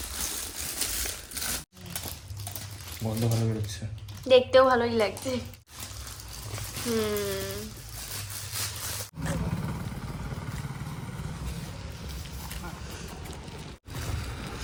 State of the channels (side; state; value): both; identical; correlation 1.00